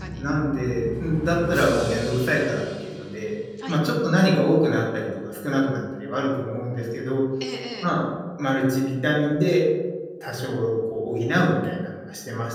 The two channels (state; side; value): identical; both; correlation 1.00